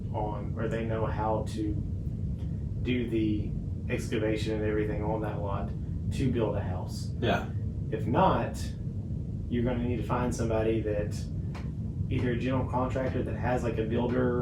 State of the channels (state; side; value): identical; both; correlation 1.00